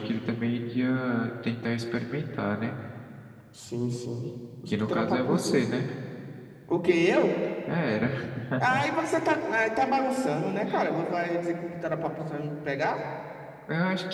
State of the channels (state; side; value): identical; both; correlation 1.00